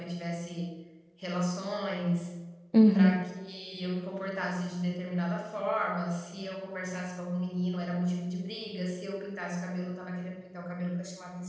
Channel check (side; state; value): both; identical; correlation 1.00